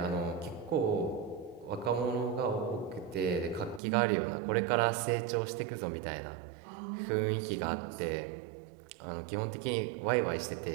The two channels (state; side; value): drops out; left; at 3.8 s